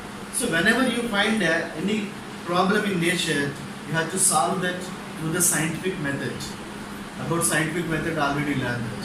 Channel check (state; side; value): identical; both; correlation 1.00